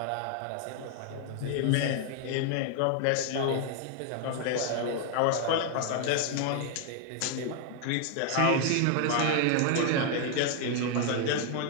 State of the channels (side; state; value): both; different; correlation 0.00